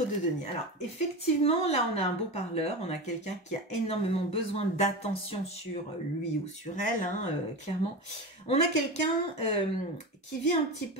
de denier. Alors effectivement, là on a un beau parleur, on a quelqu'un qui a énormément besoin d'attention sur lui ou sur elle, hein, clairement. On a quelqu'un qui vit un petit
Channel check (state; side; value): normal; both; correlation 0.24